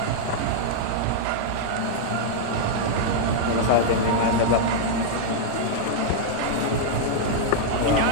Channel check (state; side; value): different; both; correlation -0.01